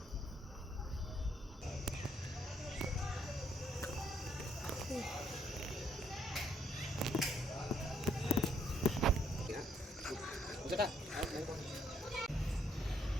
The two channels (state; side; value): normal; both; correlation 0.71